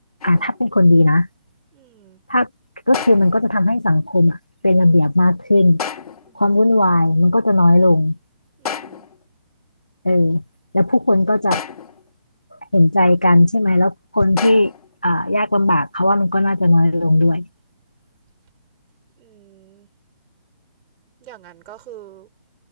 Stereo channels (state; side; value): inverted; both; correlation -0.94